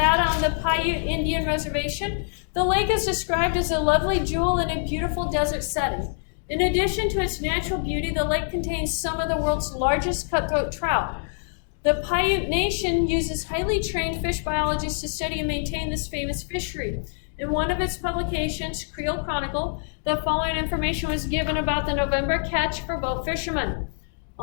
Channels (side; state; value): right; silent; digital silence